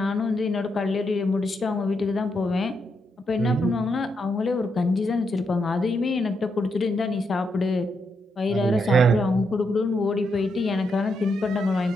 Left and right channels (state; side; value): normal; both; correlation 0.81